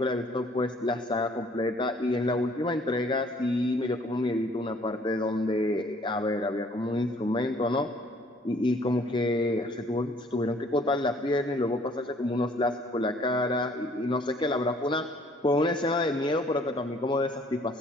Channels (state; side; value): normal; both; correlation 0.59